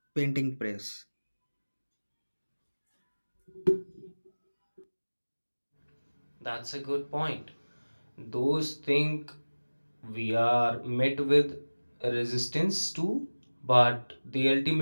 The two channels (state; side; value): inverted; both; correlation -1.00